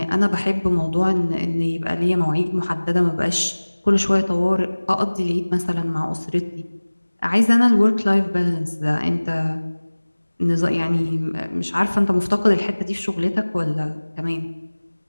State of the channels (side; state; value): both; inverted; correlation -1.00